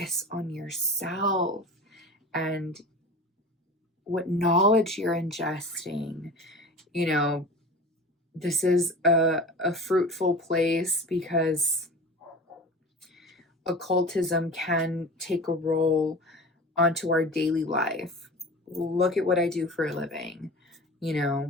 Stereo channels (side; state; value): both; normal; correlation 0.36